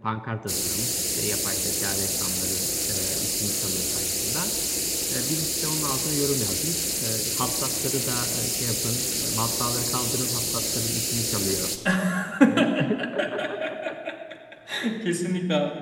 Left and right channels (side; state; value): both; identical; correlation 1.00